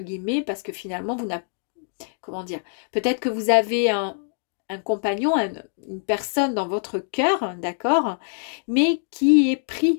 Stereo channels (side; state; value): right; silent; digital silence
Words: guillemets parce que finalement vous n'avez, comment dire, peut-être que vous avez un compagnon, une personne dans votre cœur, d'accord, mais qui est